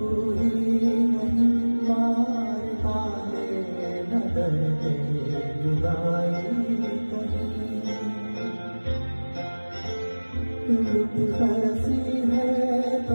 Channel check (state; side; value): inverted; both; correlation -1.00